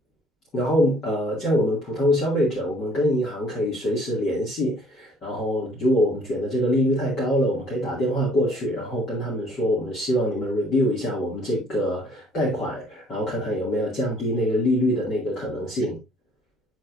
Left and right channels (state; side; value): normal; both; correlation 0.58